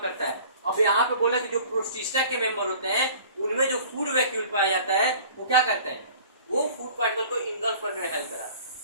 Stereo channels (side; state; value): both; inverted; correlation -0.47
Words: करता है, अब यहाँ पे बोला कि जो प्रोटिस्टा के मेंबर होते हैं उनमें जो फूड वैक्यूल पाया जाता है वो क्या करते हैं, वो फूड पार्टिकल को इंगल्फ करने में हेल्प कराता है